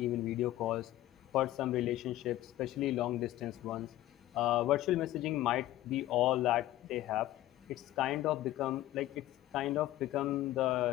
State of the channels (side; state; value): right; quieter; 15.0 dB